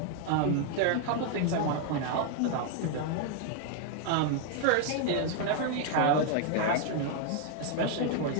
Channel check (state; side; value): different; both; correlation 0.00